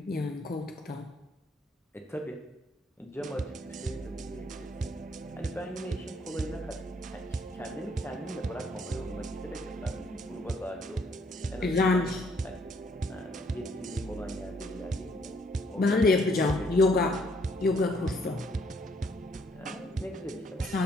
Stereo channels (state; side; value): normal; both; correlation 0.67